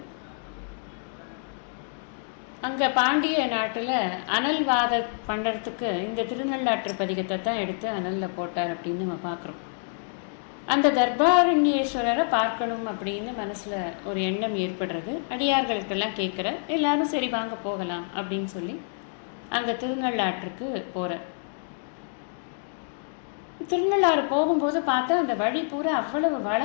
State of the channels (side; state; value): right; silent; digital silence